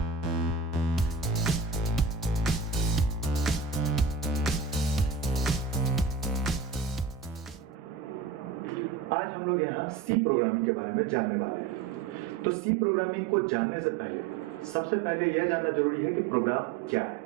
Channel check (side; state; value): left; quieter; 5.7 dB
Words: आज हम लोग यहाँ सी प्रोग्रामिंग के बारे में जानने वाले हैं। तो सी प्रोग्रामिंग को जानने से पहले सबसे पहले यह जानना जरूरी है कि प्रोग्राम क्या है।